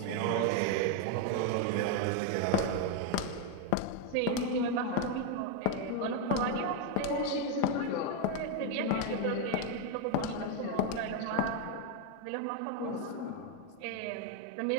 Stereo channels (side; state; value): both; different; correlation 0.01